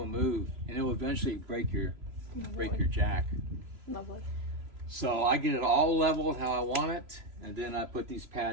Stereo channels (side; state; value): left; late; 3.0 ms